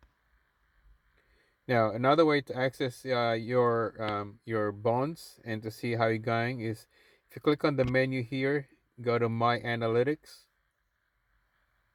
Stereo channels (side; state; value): both; identical; correlation 1.00